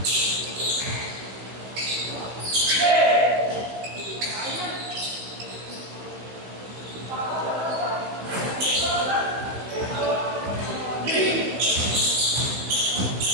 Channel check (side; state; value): left; late; 16 ms